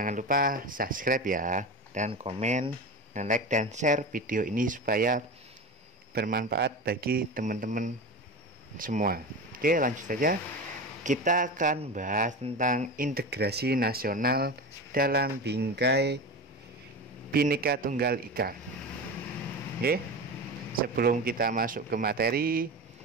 lupa subscribe ya, dan komen, dan like, dan share video ini supaya bermanfaat bagi teman-teman semua. Oke, lanjut saja. Kita akan bahas tentang integrasi nasional dalam bingkai Bhinneka Tunggal Ika. Oke, sebelum kita masuk ke materi,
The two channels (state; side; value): normal; both; correlation 0.26